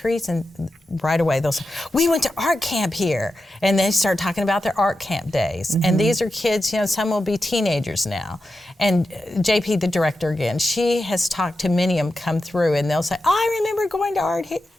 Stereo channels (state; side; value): normal; both; correlation 0.90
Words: and right away they'll say, we went to art camp here. And they start talking about their art camp days. And these are kids, some will be teenagers now. And JP, the director again, she has talked to many of them come through, and they'll say, I remember going to art